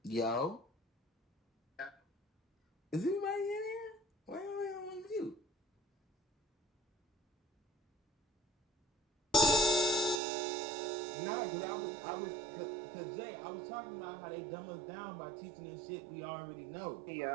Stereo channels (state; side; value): drops out; left; at 10.2 s